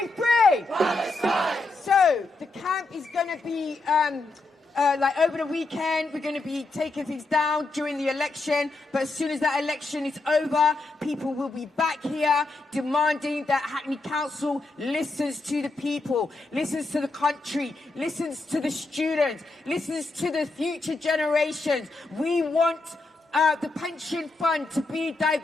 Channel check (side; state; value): right; quieter; 3.3 dB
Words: free! Palestine! So the camp is going to be like over the weekend, we're going to be taking things down during the election, but as soon as that election is over, people will be back here demanding that Hackney Council listens to the people, listens to the country, listens to the students, listens to the future generations. We want the pension fund to be